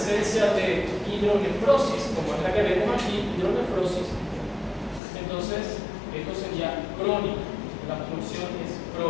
de hidronefrosis, como es la que vemos aquí, hidronefrosis, entonces esto sería crónico, la obstrucción es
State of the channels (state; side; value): drops out; right; at 5.0 s